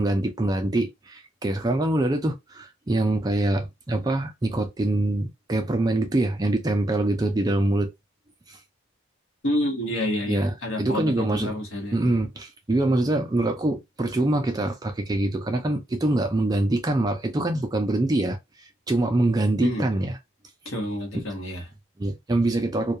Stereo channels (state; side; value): normal; both; correlation 0.81